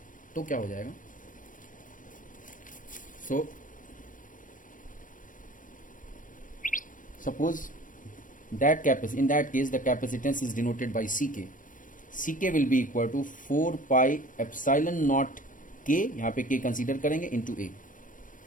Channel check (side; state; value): right; late; 0.38 ms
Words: तो क्या हो जाएगा. सो suppose that in that case the capacitance is denoted by Ck. Ck will be equal to 4 pi epsilon naught K, यहाँ पे K कंसीडर करेंगे, into A,